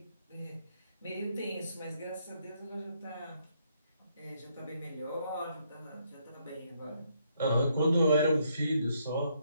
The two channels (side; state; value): both; inverted; correlation -0.73